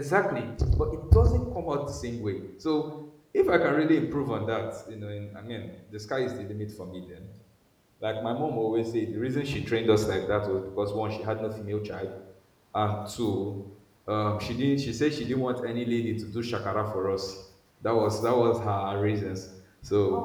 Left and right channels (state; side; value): identical; both; correlation 1.00